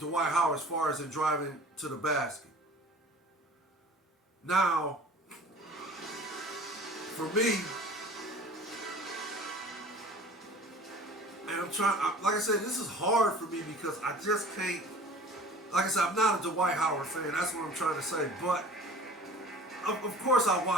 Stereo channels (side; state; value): both; normal; correlation 0.45